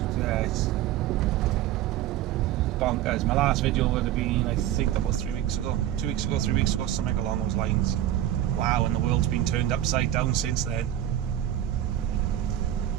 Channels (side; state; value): left; quieter; 12.4 dB